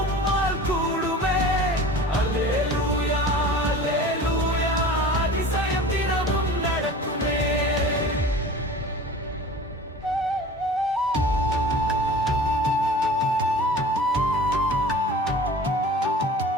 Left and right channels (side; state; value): both; normal; correlation 0.39